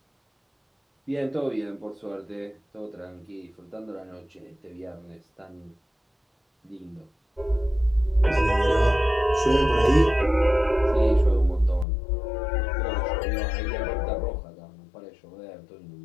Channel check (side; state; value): right; drops out; at 11.9 s